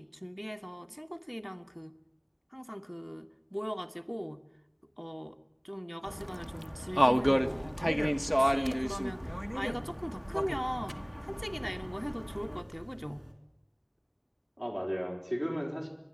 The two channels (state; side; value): identical; both; correlation 1.00